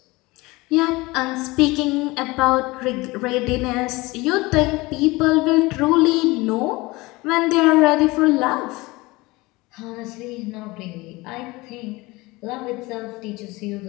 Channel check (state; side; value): quieter; right; 22.1 dB